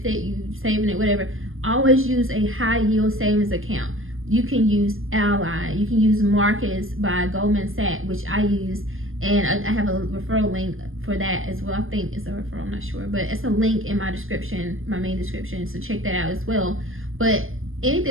it, you saving it, whatever, always use a high yield savings account. You can use Ally, you can use Marcus by Goldman Sachs, which I use, and I have a referral link for that as well. I think it's a referral, I'm not sure, but it's a link in my description, my main description, so check that out as well. But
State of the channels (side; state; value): left; late; 0.60 ms